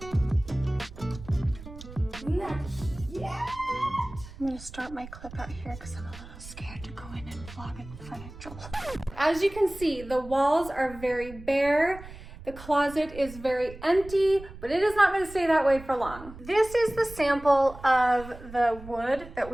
I'm gonna start my clip out here because I'm a little scared to go in and vlog in front of Joel. As you can see, the walls are very bare. The closet is very empty, but it is not gonna stay that way for long. This is the sample of the wood that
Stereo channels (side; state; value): right; noise; rumble, 15 dB below the sound